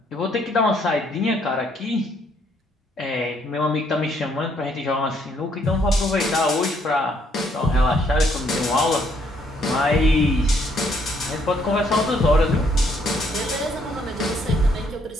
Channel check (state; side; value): normal; both; correlation 0.68